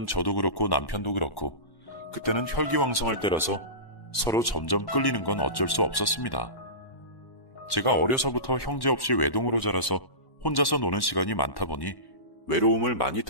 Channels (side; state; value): right; late; 1.1 ms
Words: 저도 그렇고 남편도 그렇고 그때는 혈기왕성할 때라서 서로 점점 끌리는 건 어쩔 수 없었습니다. 제가 어려서부터 형제 없이 외동으로 자라서 혼자서 노는 시간이 많다 보니 외로움을 많이